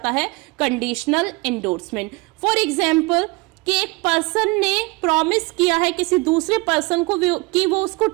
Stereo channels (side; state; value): left; quieter; 25.6 dB